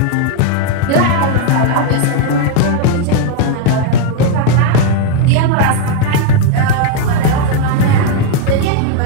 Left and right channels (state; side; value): different; both; correlation 0.01